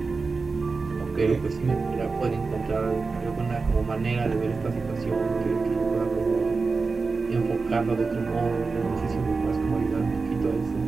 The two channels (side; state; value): left; quieter; 4.3 dB